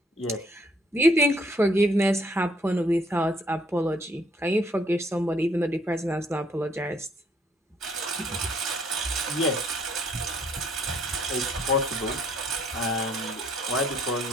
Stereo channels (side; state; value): both; normal; correlation 0.64